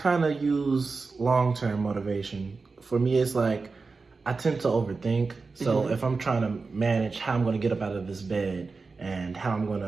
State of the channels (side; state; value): left; quieter; 4.2 dB